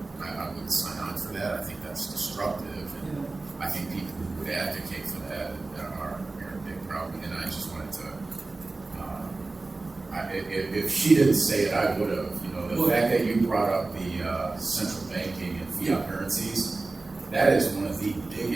sign on for that. I think that's destructive, and I think people who would advocate for that are a big problem. And I just wanted to, if she didn't say it, I would have. The fact that you brought up the central banking and fiat currencies, that is one of the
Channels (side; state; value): left; quieter; 3.4 dB